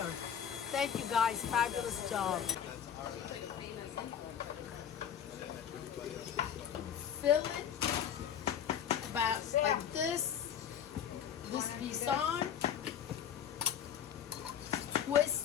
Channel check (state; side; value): quieter; right; 8.9 dB